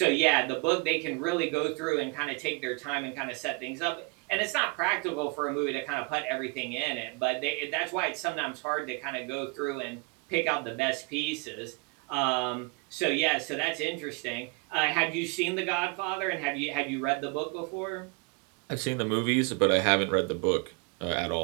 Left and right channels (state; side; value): quieter; left; 30.1 dB